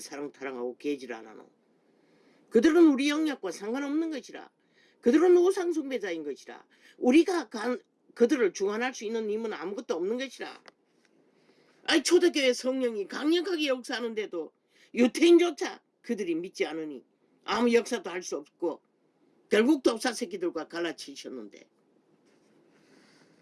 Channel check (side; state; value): both; identical; correlation 1.00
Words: 사랑 타령하고 개질 안 하노? 그들은 우리 영역과 상관없는 것이라. 그들은 우상 숭배자인 것이라. 우리가 그들을 중환할 수 있는 힘은 아무것도 없는 것이라. 아니 초대교회 성령이 강력하게 역사하는데도 유태인조차 그들이 믿지 않으니 아무 역사도 할 수 없고 결국 독사 새끼들과 갈라치셨는데.